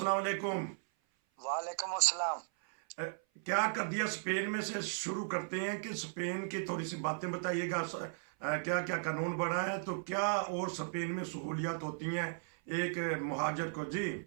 वालेकुम। वालेकुम अस्सलाम। क्या कर दिया स्पेन में से शुरू करते हैं कि स्पेन की थोड़ी सी बातें बताइएगा। क्या क्या कानून बना है, तो क्या और स्पेन में सहूलियात होती हैं एक मुहाजिर को। जी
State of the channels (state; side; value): silent; left; 54 dB below the other